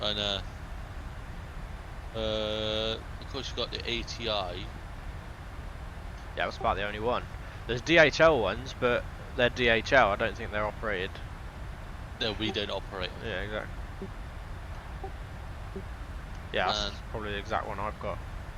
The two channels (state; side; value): identical; both; correlation 1.00